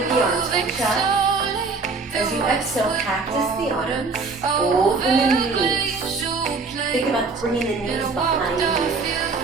the arms, reach up. As you exhale, cactus the arms, open the knees. Think about bringing the knees behind you.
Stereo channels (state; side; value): quieter; left; 4.2 dB